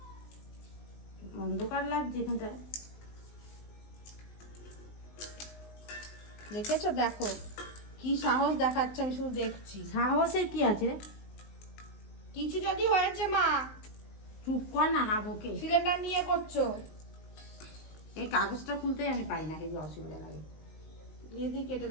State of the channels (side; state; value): right; late; 19 ms